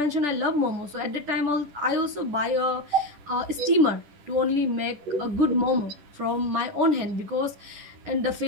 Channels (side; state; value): left; late; 10 ms